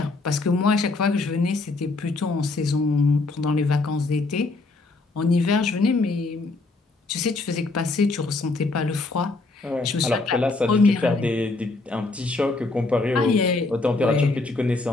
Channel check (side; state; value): right; quieter; 3.4 dB